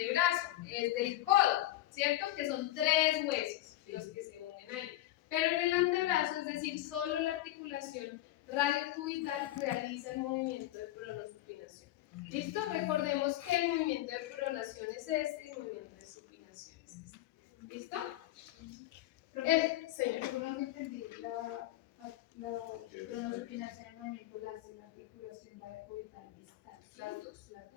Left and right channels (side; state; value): right; quieter; 15.2 dB